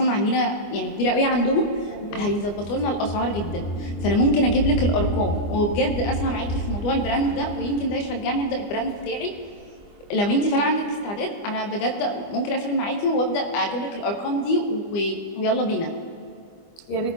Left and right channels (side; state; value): right; late; 25 ms